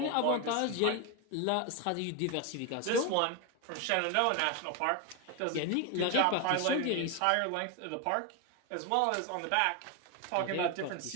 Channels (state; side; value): different; both; correlation 0.01